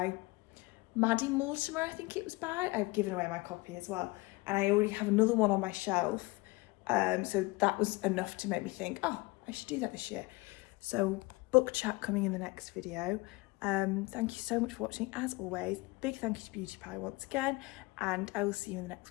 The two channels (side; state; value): right; quieter; 23.7 dB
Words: Maddie Mortimer, I think it was by. I've given away my copy as well, and I already have another one on my shelf. So that was enough to make me think, oh, I should do that this year. So book chat coming in the next video. Thank you so much for watching as always. Big thank you to Beauty Pie once again, and I will see you in the next